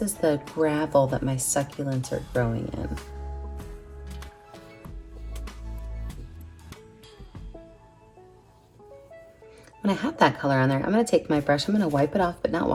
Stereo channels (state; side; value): identical; both; correlation 1.00